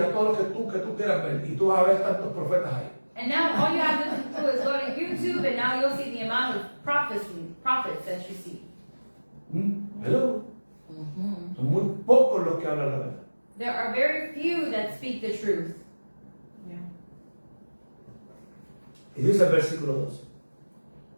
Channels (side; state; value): both; inverted; correlation -1.00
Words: a todo lo que tú quieras ver, y tú vas a ver tantos profetas ahí. And now all you have to do is go to YouTube and now you'll see the amount of prophets that you see. Hello. Son muy pocos los que hablan la verdad. There are very few that speak the truth. Yeah. Y dice el versículo 12.